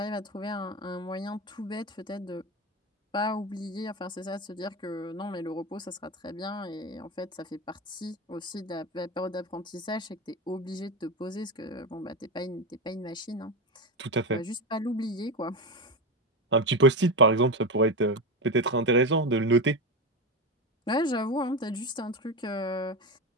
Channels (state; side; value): normal; both; correlation 0.17